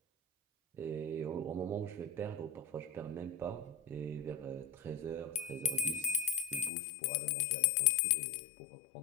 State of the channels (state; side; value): drops out; right; at 6.7 s